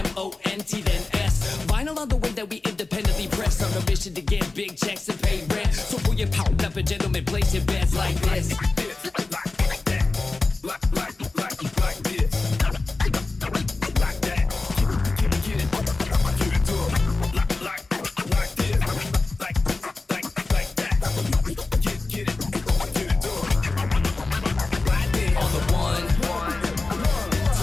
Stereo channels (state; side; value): quieter; right; 3.5 dB